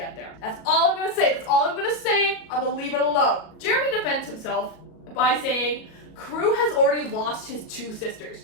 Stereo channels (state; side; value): late; right; 37 ms